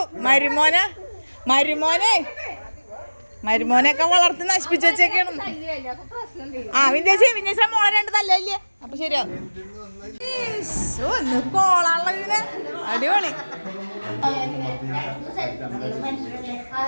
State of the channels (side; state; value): both; inverted; correlation -1.00